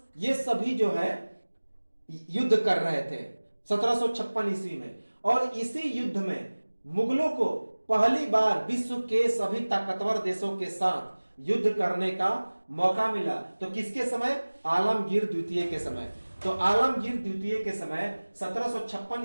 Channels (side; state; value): both; inverted; correlation -1.00